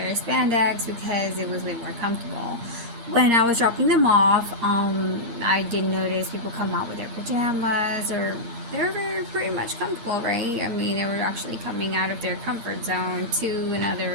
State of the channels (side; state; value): left; late; 8.6 ms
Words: spandex because it was way more comfortable. When I was dropping them off, I did notice people come out with their pajamas, or they were very pretty much comfortable, right? I mean, they were actually coming out of their comfort zone to